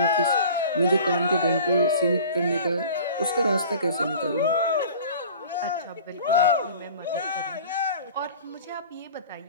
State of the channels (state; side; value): inverted; both; correlation -0.43